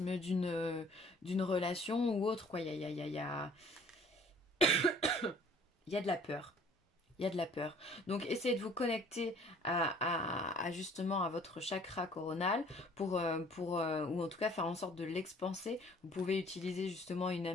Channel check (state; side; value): normal; both; correlation 0.54